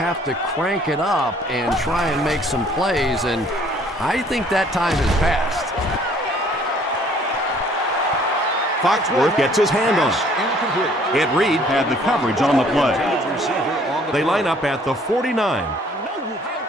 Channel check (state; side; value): normal; both; correlation 0.58